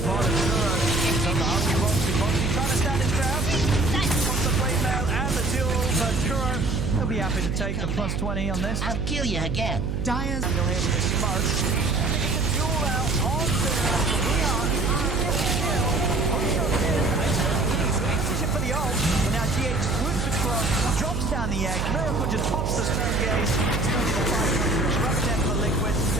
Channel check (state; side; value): noise; right; hum, 2 dB below the sound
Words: bottom, Kuro is on the hungry Boxy. Boxy trying to stand his ground. Wants the blade mail and the duel, but Kuro will be happy to take the plus 20 on this. I'll kill you again. Dyer's Still here with the smoke. And they get the duel out onto Weehaw. For the ult, and now GH swoops across, drops down the egg. Miracle just pops the stone gaze. It's going to be the fight. Disrupt them for Liquid.